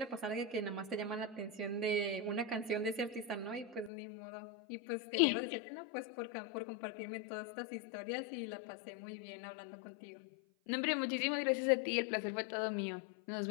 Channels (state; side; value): drops out; right; at 3.9 s